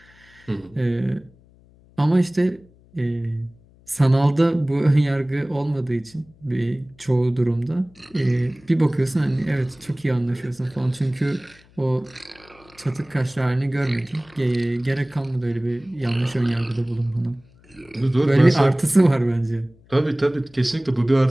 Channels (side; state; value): left; noise; hum, 28 dB below the sound